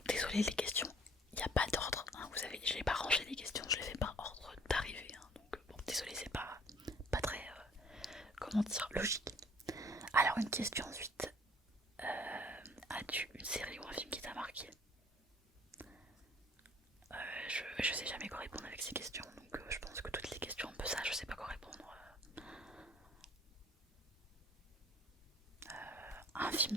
désolé les questions, il n'y a pas d'ordre, hein, vous savez, je n'ai pas rangé les questions, je les fais par ordre d'arrivée, hein, donc bon désolé, c'est pas très comment dire, logique. Alors une question ensuite, as-tu une série ou un film qui t'a marqué? Je sais jamais quoi répondre avec ces questions, donc je pense que toutes les questions un peu ça, je sais pas quoi répondre. Un film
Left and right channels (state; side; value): normal; both; correlation 0.56